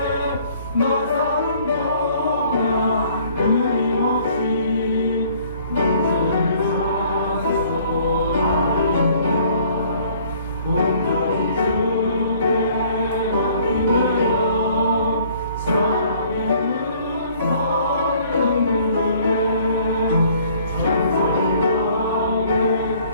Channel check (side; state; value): both; inverted; correlation -0.58